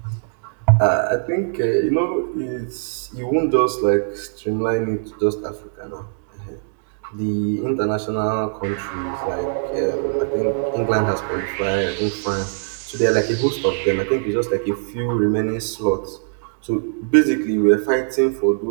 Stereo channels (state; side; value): silent; left; digital silence